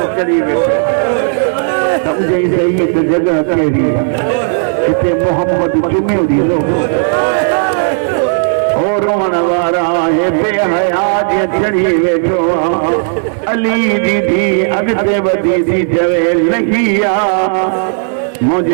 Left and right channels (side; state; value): left; silent; digital silence